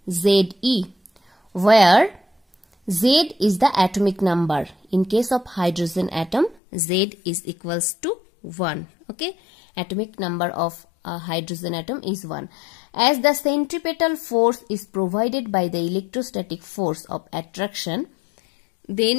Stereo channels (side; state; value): right; drops out; at 6.6 s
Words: Ze, where Z is the atomic number. In case of hydrogen atom, Z is equals to 1. Okay, atomic number of a hydrogen atom is 1. As the centripetal force is provided by the electrostatic force of attraction,